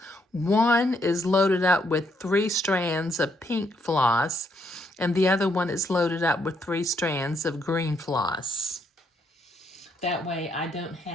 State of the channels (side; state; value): both; normal; correlation 0.73